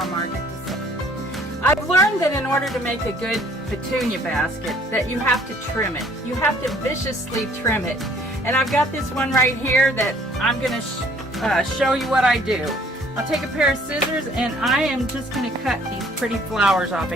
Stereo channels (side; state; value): both; normal; correlation 0.59